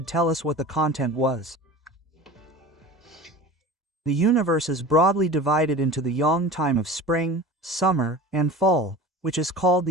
tell us what the content was. The universe is broadly divided into the yang time of spring, summer, and fall, which is called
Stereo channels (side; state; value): both; normal; correlation 0.36